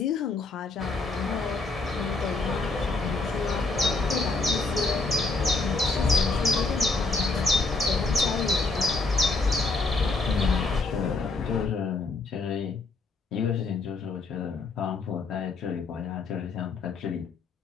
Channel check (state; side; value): quieter; right; 3.7 dB